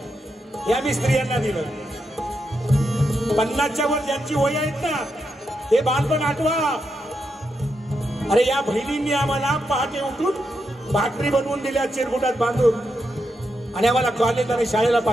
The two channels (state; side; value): normal; both; correlation 0.84